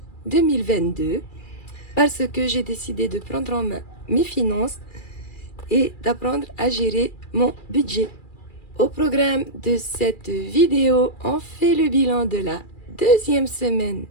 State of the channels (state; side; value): late; right; 2.4 ms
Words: 2022 parce que j'ai décidé de prendre en main mes finances et d'apprendre à gérer mon budget. Au programme de cette vidéo, on fait le bilan de la deuxième semaine